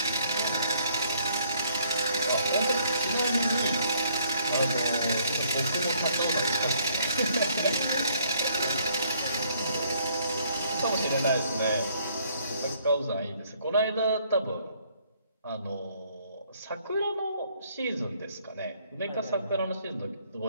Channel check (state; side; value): inverted; both; correlation -0.65